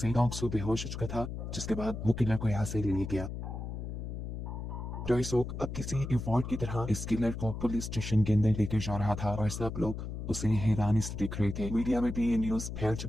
डोंगसो बेहोश हो चुका था, जिसके बाद वो किलर को यहाँ से ले गया। टाइसो अब किसी इवॉल्ट की तरह इस किलर को पुलिस स्टेशन के अंदर लेकर जा रहा था और सब लोग उसे हैरानी से देख रहे थे। मीडिया में भी ये न्यूज फैल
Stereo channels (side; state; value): left; noise; hum, 6 dB below the sound